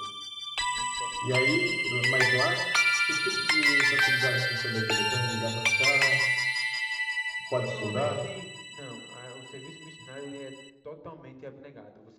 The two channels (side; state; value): both; identical; correlation 1.00